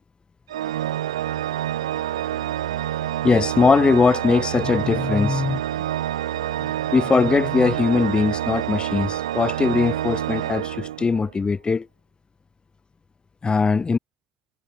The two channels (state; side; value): normal; both; correlation 0.61